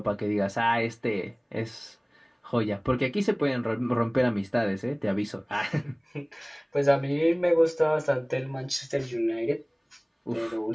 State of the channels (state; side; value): identical; both; correlation 1.00